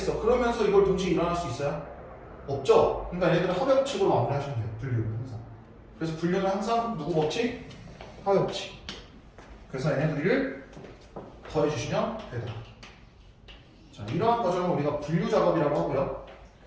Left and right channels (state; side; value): identical; both; correlation 1.00